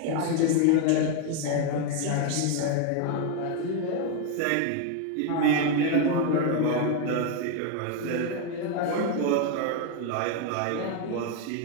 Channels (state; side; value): different; both; correlation 0.01